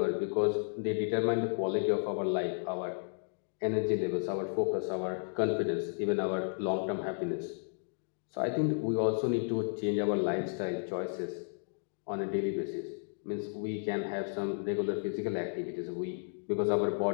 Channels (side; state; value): right; silent; digital silence